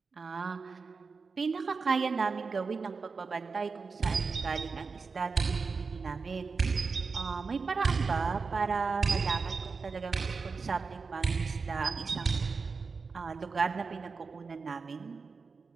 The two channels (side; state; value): left; quieter; 4.7 dB